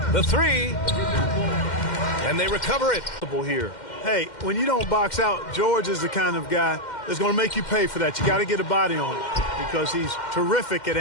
The three. And they recover it. Here. Hey, when you don't box out, George is the kind of guy that's going to make you pay for that. You got to get a body on it because he's terrific at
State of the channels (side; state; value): right; late; 2.1 ms